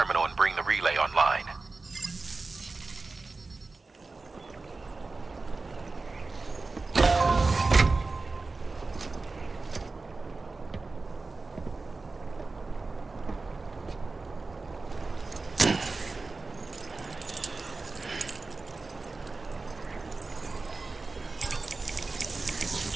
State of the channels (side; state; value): left; quieter; 3.7 dB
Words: and bring the relay online.